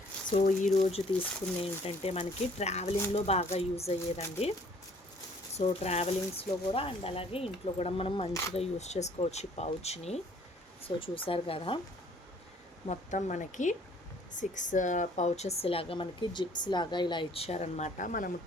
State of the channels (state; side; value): normal; both; correlation 0.58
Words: సో ఈరోజు తీసుకున్న ఏంటంటే మనకి ట్రావెలింగ్లో బాగా యూజ్ అయ్యేదండి. సో ట్రావెలింగ్స్లో కూడా అండ్ అలాగే ఇంట్లో కూడా మనం మంచిగా యూజ్ చేసుకోవచ్చు ఈ పౌచ్ని. సో చూసారు కదా, మొత్తం మనకి 6 పౌచెస్ లాగా మనకి జిప్స్ లాగా ఇలా ఇచ్చారనమాట. మనము